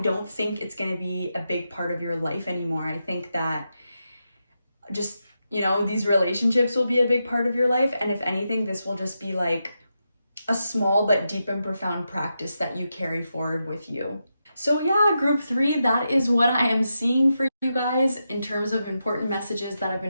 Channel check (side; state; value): both; inverted; correlation -0.87